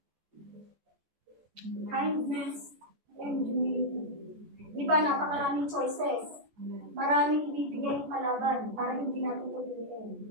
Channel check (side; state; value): left; late; 14 ms